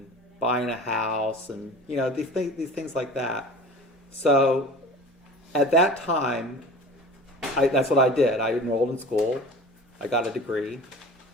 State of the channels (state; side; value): normal; both; correlation 0.39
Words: buying a house, and these things like that. So at that time, that's what I did. I enrolled in school, I got a degree,